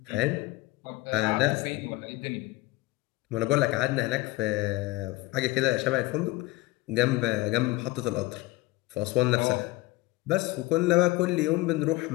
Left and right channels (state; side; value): quieter; right; 19.6 dB